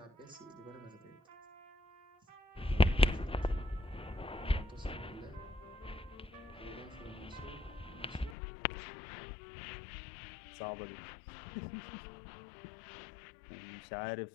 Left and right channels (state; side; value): drops out; right; at 8.3 s